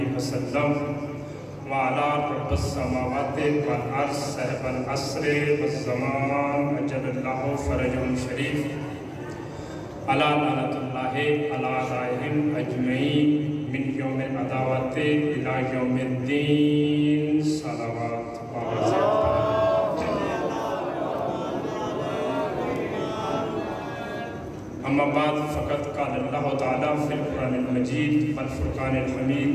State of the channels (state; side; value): identical; both; correlation 1.00